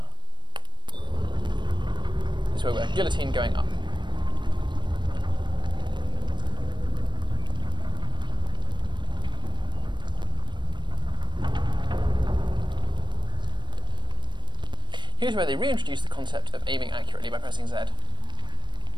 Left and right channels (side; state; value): left; late; 0.22 ms